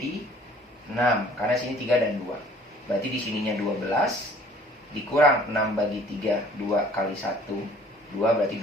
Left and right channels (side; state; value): both; normal; correlation 0.54